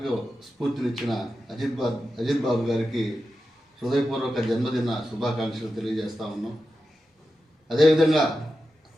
స్ఫూర్తినిచ్చిన అజిత్ బాబు గారికి హృదయపూర్వక జన్మదిన శుభాకాంక్షలు తెలియజేస్తా ఉన్నాం. అదేవిధంగా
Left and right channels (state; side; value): normal; both; correlation 0.91